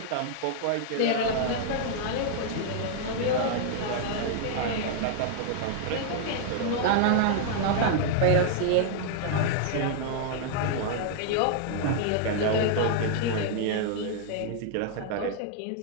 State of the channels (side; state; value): both; different; correlation -0.01